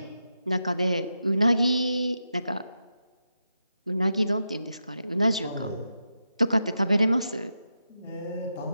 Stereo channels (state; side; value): inverted; both; correlation -0.88